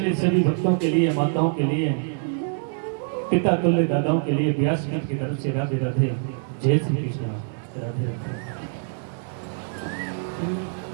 सभी भक्तों के लिए माताओं के लिए पिता तुल्य दादाओं के लिए व्यासपीठ की तरफ से राधे राधे जय श्री कृष्ण राधे राधे।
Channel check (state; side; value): silent; left; 62 dB below the other